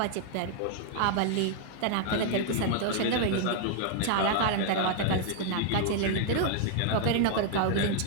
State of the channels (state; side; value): different; both; correlation 0.00